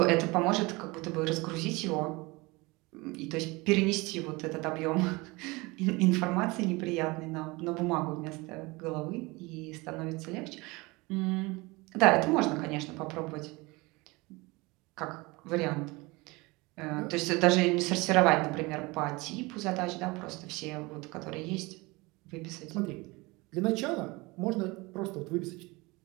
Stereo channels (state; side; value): quieter; left; 24.1 dB